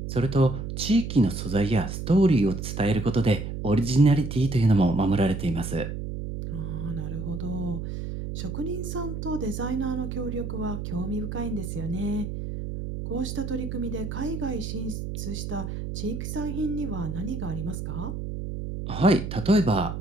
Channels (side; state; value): right; noise; hum, 5 dB below the sound